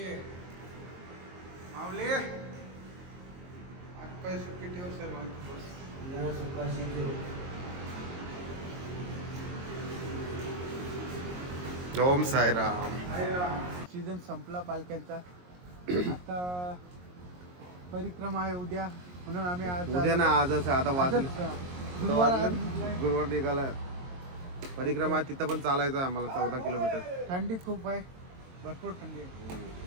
मावले आज पाय सुट्टी ठेव सर्वांची बस ओम साईराम. सीझन संपला पालख्यांचा. आता परिक्रमा आहे उद्या म्हणून आम्ही आज उद्या ना आजच आहे. आता वाजलं गुरुवार निघाला. परिक्रमा तिथं पण चालायचं आहे आम्हाला 14 किलोमीटर. थंडी खूप आहे, भरपूर थंडी आहे.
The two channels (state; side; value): late; left; 22 ms